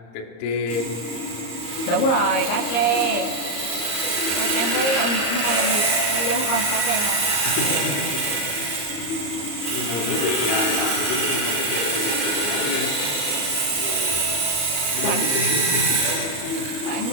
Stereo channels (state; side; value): late; right; 34 ms